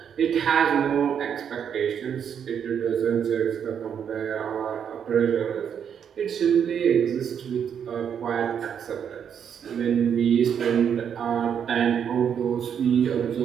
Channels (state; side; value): quieter; left; 8.1 dB